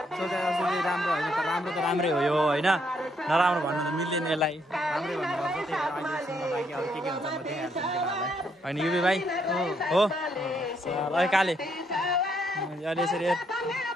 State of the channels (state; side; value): normal; both; correlation 0.73